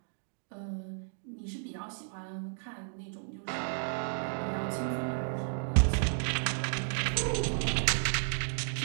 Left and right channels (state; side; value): silent; left; digital silence